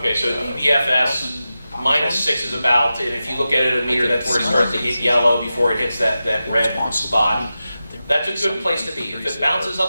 -6 is about, and if you look at it at a meter, that's where it starts to get yellow before it hits that red spot. That's a good place to be. If it bounces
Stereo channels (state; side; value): inverted; both; correlation -0.92